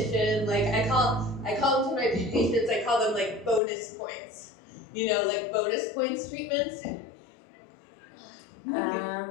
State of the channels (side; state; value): right; drops out; at 3.6 s